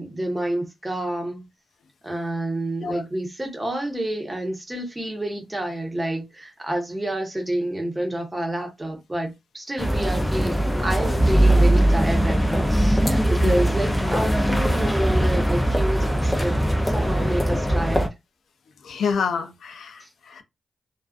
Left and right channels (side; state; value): both; normal; correlation 0.96